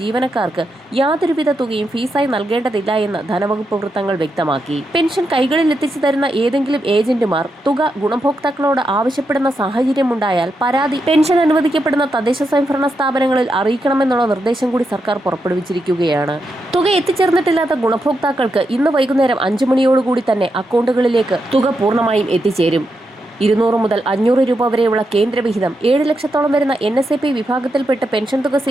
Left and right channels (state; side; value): normal; both; correlation 0.84